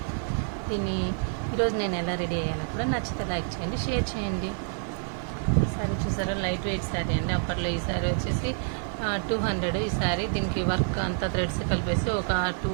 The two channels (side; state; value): left; silent; 58 dB below the other